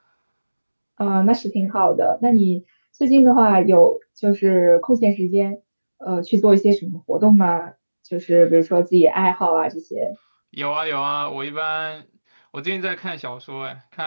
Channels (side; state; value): both; inverted; correlation -1.00